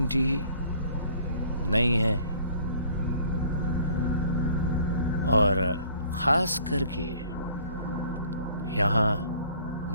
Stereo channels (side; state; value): both; inverted; correlation -0.55